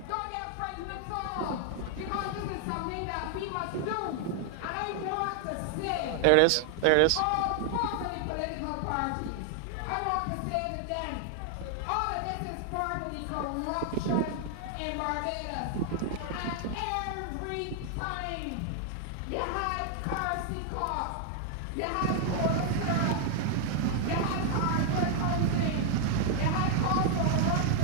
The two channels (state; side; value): different; both; correlation 0.00